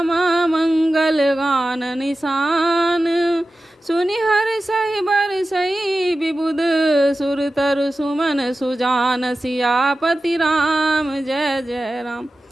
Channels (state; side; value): normal; both; correlation 0.94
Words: मंगल गान निशान। सुनि हर सही बर सही विबुध सुर तरु सुमन सुजान, सियापति राम जय जय राम।